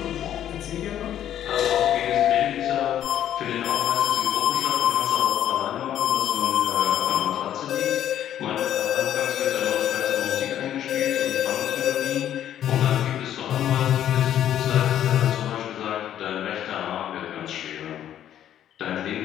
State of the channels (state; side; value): quieter; right; 10.9 dB